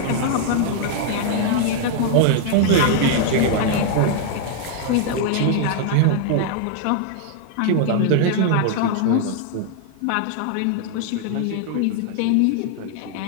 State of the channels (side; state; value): both; different; correlation 0.00